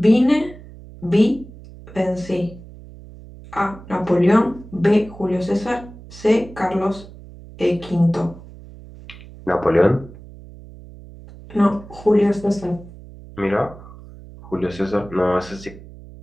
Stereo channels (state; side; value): noise; right; hum, 18 dB below the sound